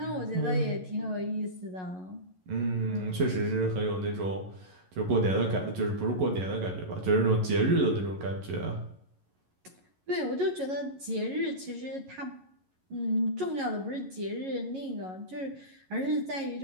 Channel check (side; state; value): left; late; 11 ms